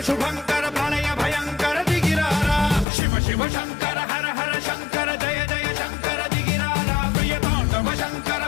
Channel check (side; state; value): right; drops out; at 2.9 s